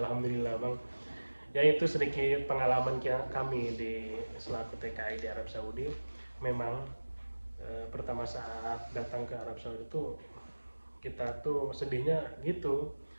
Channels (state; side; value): inverted; both; correlation -1.00